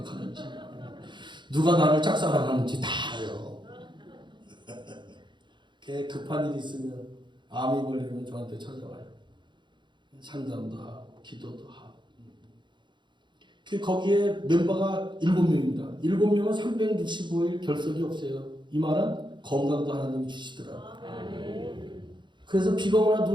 누가 나를 짝사랑하는지 다 알아요. 급한 일이 있으면 암이 걸리면 저한테 찾아와요. 상담도 하고 기도도 하고. 거기에 멤버가 7명입니다. 7명은 365일 결석이 없어요. 이 말은 건강도 하나님이 주시더라고요. 그래서 비가 오나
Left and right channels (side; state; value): left; late; 0.23 ms